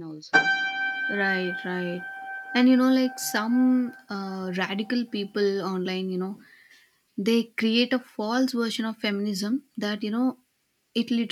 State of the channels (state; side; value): identical; both; correlation 1.00